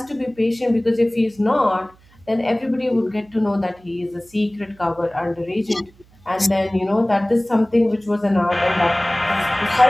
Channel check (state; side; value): noise; right; hum, 29 dB below the sound